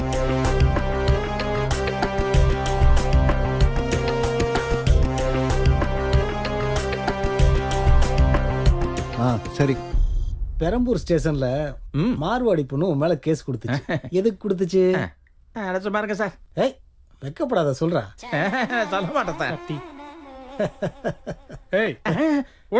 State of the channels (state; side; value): identical; both; correlation 1.00